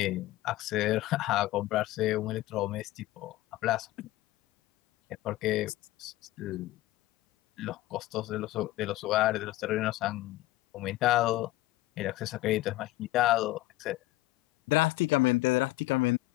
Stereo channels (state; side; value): quieter; right; 17.3 dB